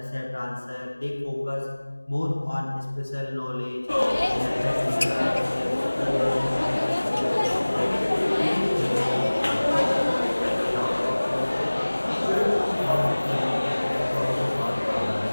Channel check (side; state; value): both; inverted; correlation -1.00